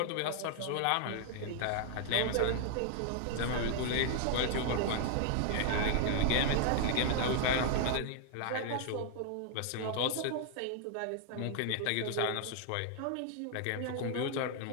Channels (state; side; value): different; both; correlation 0.00